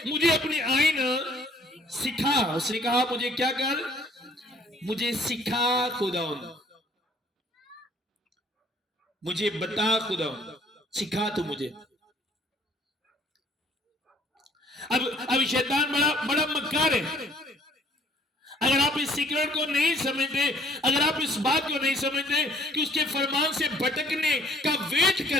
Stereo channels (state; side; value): normal; both; correlation 0.59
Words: मुझे अपनी आइन सिखा। उसने कहा मुझे क्या कर, मुझे सिखा खुदा, मुझे बता खुदा, सिखा तू मुझे। अब शैतान बड़ा मक्कार है। अगर आप इस सीक्रेट को नहीं समझते, अगर आप इस बात को नहीं समझते कि उसके फरमान से भटकने का वेट